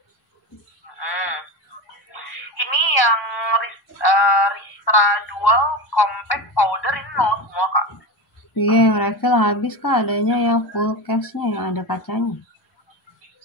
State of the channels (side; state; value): right; late; 1.0 ms